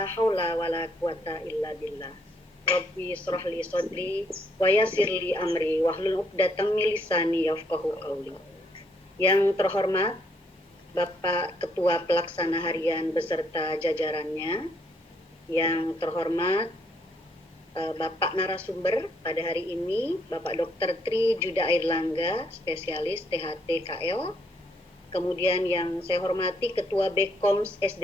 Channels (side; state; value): both; normal; correlation 0.71